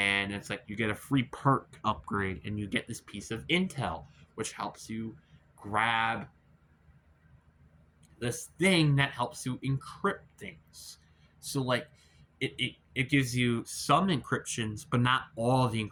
it's like you get a free perk upgrade and you get this piece of intel, which helps you grab this thing that helps you encrypt things. So like it gives you some encryptions, but not all the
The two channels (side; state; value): both; identical; correlation 1.00